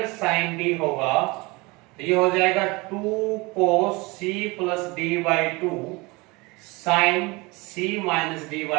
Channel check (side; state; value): left; quieter; 24.9 dB